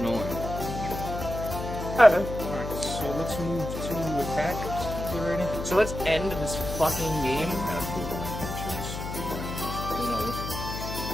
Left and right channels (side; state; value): left; noise; hum, 6 dB below the sound